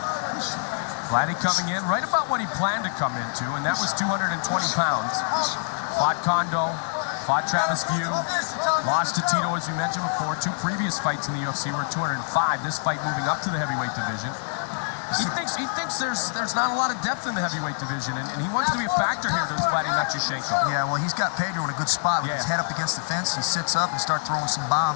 Vladdy coming in right about what he planned to come into, and that was 220 pounds. Fought Kondo, fought Travis View, lost to Tito, as we mentioned before. 2 previous fights in the UFC were 205. This fight moving up to the heavyweight division. He thinks there's not a lot of depth in the heavyweight division, and he wants to be a factor here, does Vladimir Matyushenko. Yeah, well, he's got Pedro in a good spot with his head up against the fence. He sits up and starts throwing some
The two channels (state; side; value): silent; right; digital silence